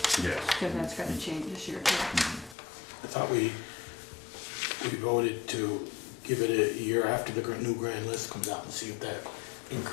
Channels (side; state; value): right; drops out; at 2.6 s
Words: Yes. because that's gonna change this year too. I thought we voted to give it a year after the new grand list comes out and see if that